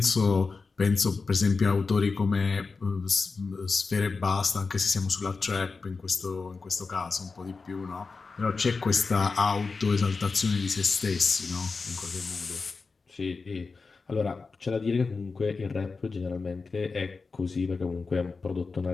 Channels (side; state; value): right; quieter; 4.4 dB